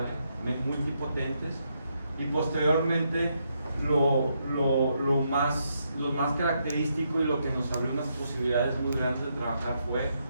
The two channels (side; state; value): both; inverted; correlation -0.79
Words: multipotentes. Y posteriormente lo más característico y lo que nos abrió unas posibilidades muy grandes de trabajar fue